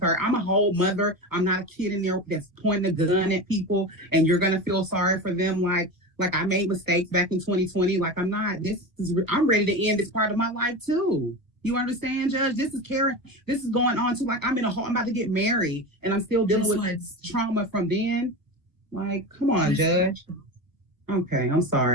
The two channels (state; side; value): late; left; 1.1 ms